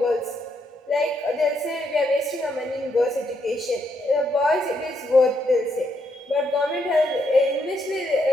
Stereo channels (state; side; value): normal; both; correlation 0.77